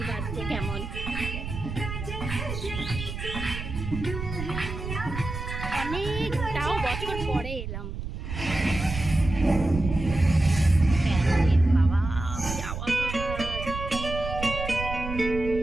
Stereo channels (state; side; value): noise; right; rumble, 7 dB below the sound